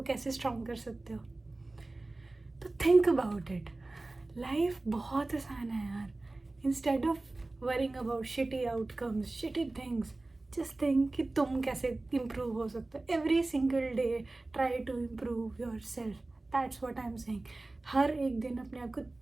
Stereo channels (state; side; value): quieter; left; 3.0 dB